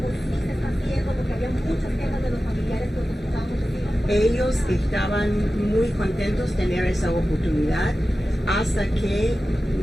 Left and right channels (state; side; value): normal; both; correlation 0.94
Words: sí se está haciendo, porque había muchas quejas de los familiares que nos escuchábamos decir. Ellos estaban muy contentos de tener esa oportunidad hasta que